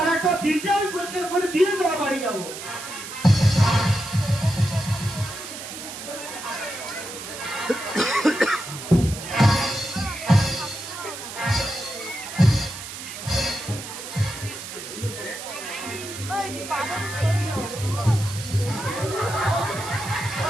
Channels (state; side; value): noise; right; hiss, 10 dB below the sound